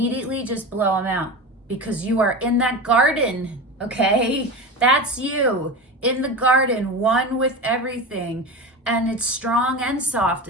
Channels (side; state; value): both; normal; correlation 0.27